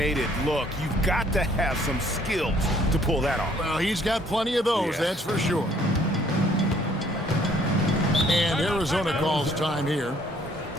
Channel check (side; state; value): both; normal; correlation 0.62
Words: it look. You've got to have some skills to pull that off. Well, he's got plenty of those, that's for sure. And Arizona calls time here.